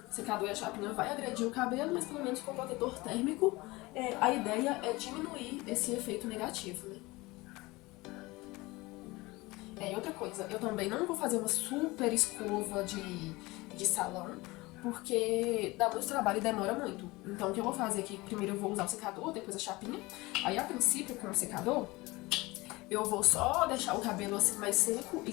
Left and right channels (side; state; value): right; quieter; 21.9 dB